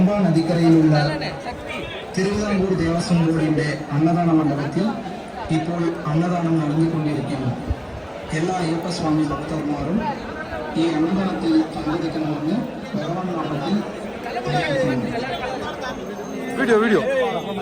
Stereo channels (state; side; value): identical; both; correlation 1.00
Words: நதிக்கரையில் உள்ள திருவிதாங்கூர் தேவஸ்வம் போர்டிന്റെ அன்னதான மண்டபத்தில் ഇപ്പോൾ അന്നദാനം നടന്നുകൊണ്ടിരിക്കുന്നു. എല്ലാ അയ്യപ്പ സ്വാമി ഭക്തന്മാരും ഈ അന്നദാനത്തിൽ പങ്കെടുക്കണമെന്ന് ഭഗവാൻ നാമത്തിൽ വീഡിയോ